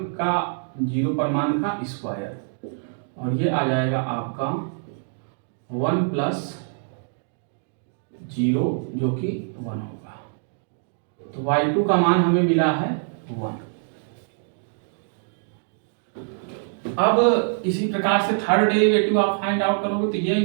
का जीरो पर मान का स्क्वायर, और ये आ जाएगा आपका 1 प्लस जीरो जो कि 1 होगा। तो y2 का मान हमें मिला है 1। अब इसी प्रकार से थर्ड डेरिवेटिव आप फाइंड आउट करोगे, तो ये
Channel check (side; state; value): left; silent; 62 dB below the other